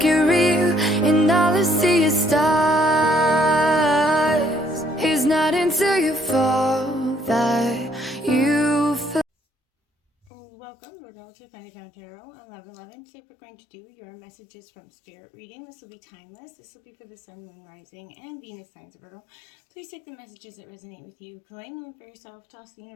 it real, and all I see is stars. It's not until you fall that you feel. Welcome, Virgo, to Attaining Tarot 1111. Today we're going to do your messages from Spirit reading. This will be timeless. This will be for the Sun, Moon, Rising, and Venus signs of Virgo. Please take the messages that resonate with you. Claim them for yourself. Toss the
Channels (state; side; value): drops out; right; at 10.3 s